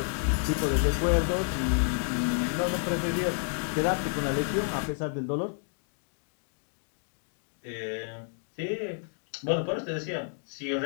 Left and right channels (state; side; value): silent; right; 58 dB below the other